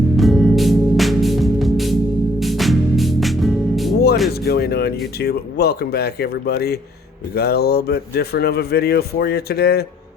is going on, YouTube? Welcome back, everybody. We got a little bit different of a video for you today.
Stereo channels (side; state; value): both; normal; correlation 0.62